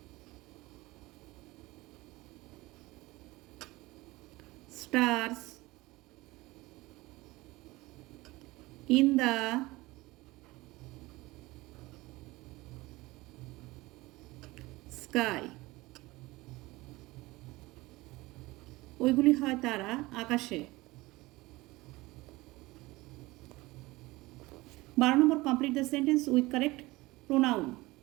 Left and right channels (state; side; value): quieter; left; 20.7 dB